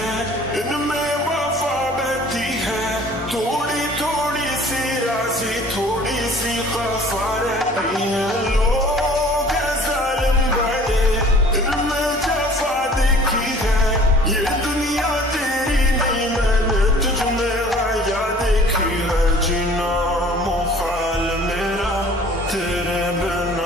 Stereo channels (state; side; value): normal; both; correlation 0.50